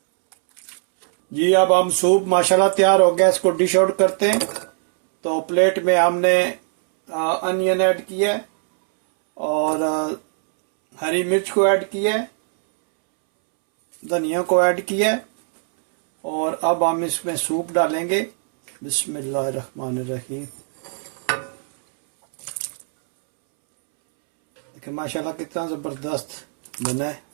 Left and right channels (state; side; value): silent; left; 65 dB below the other